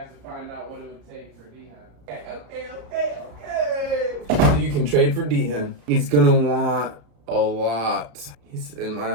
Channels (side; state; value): left; late; 34 ms